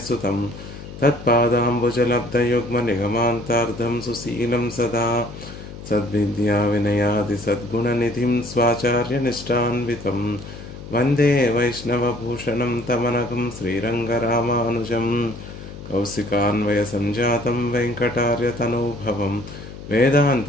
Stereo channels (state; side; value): noise; left; hum, 13 dB below the sound